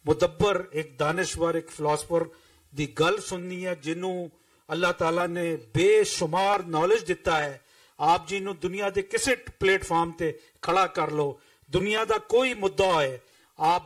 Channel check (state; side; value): identical; both; correlation 1.00